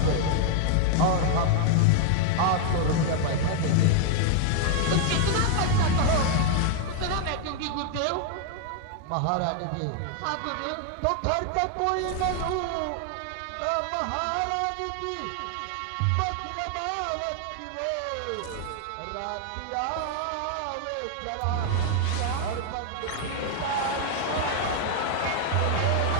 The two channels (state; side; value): different; both; correlation 0.00